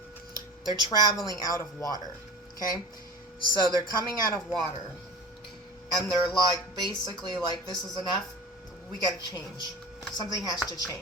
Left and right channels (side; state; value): both; normal; correlation 0.35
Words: They're traveling out of water. Okay, so they're coming out of water, and they're like, basically like, this is enough. We gotta change. Something has to